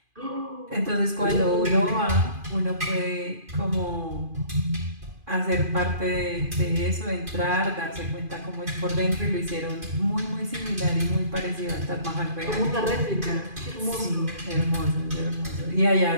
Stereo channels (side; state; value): left; late; 2.5 ms